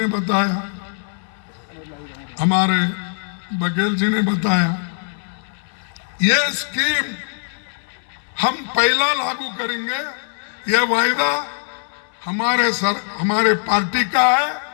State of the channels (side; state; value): right; silent; 60 dB below the other